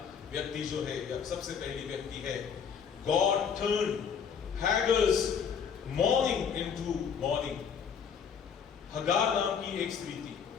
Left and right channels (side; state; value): right; quieter; 7.0 dB